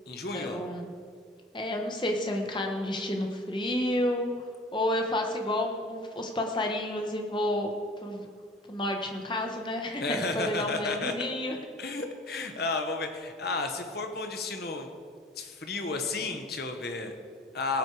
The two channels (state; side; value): normal; both; correlation 0.44